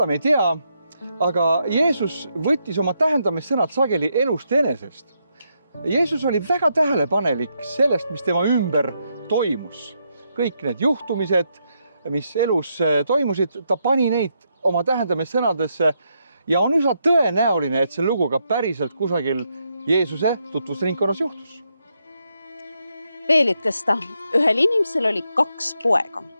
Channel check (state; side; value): inverted; both; correlation -0.80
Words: me ei tea, aga Jeesus võttis oma tähendamissõnad sageli elust enesest. Jeesus oli väga tähelepanelik sellest, mis tema ümber toimus. Kõik need juhtumised, mis elus toimusid, ta pani neid oma tähendamissõnadesse ja on üsna tõenäoline, et see lugu ka päriselt kusagil Jeesuse tutvusringkonnas juhtus. Veel ütles ta, ühel inimesel oli 2 poega.